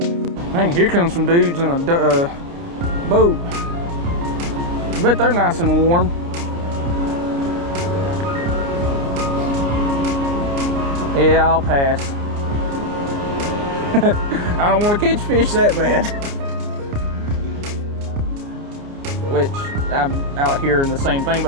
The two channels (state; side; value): late; left; 29 ms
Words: Dang, here comes some dudes in a boat. I bet they're nice and warm. Yeah, I'll pass. I don't want to catch fish that bad. Which, I'm out here in the same thing,